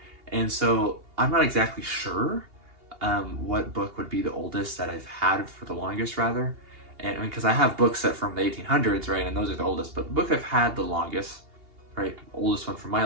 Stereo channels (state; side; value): late; left; 2.8 ms